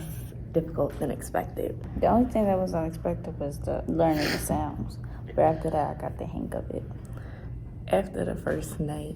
difficult than expected? The only thing that was unexpected was the learning the sounds. But after that, I got the hang of it. After the first night,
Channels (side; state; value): both; identical; correlation 1.00